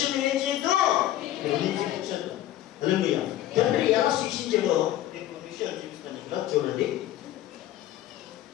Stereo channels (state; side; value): quieter; right; 13.4 dB